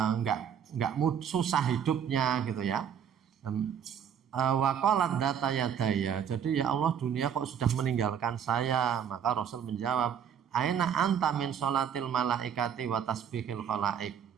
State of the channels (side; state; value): left; quieter; 8.3 dB